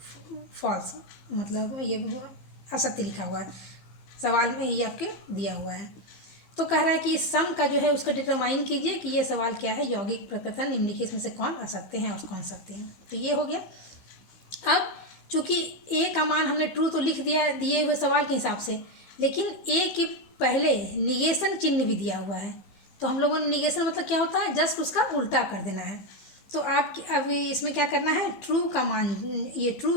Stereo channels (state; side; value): late; right; 15 ms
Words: फॉल्स, मतलब ये असत्य लिखा हुआ है, सवाल में ये आपके दिया हुआ है। तो कह रहा है कि इस सम का जो है उसका डिटरमाइन कीजिए कि ये सवाल क्या है, यौगिक प्रकथन निम्नलिखित में से कौन असत्य हैं और कौन सत्य हैं। तो ये हो गया। अब चूँकि ए का मान हमने ट्रू तो लिख दिया दिए हुए सवाल के हिसाब से, लेकिन ए के पहले निगेशन चिन्ह भी दिया हुआ है। तो हम लोगों ने निगेशन मतलब क्या होता है, जस्ट उसका उल्टा कर देना है। तो आप अभी इसमें क्या करना है, ट्रू का मान, ये